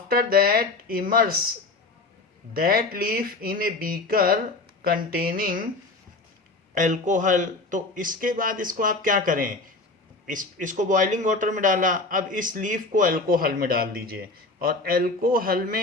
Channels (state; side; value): quieter; right; 3.4 dB